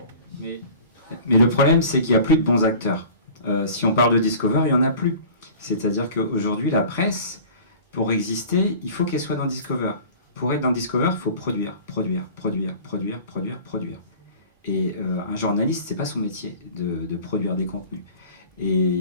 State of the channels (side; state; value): both; inverted; correlation -0.42